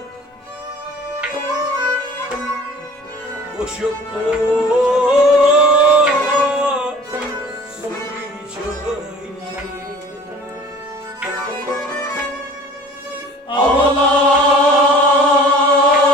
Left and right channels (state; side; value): normal; both; correlation 0.47